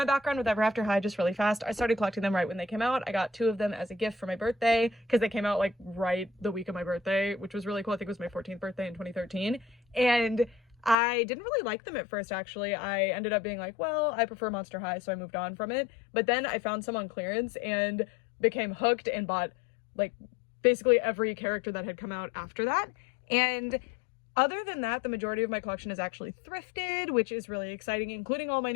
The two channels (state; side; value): drops out; right; at 11.0 s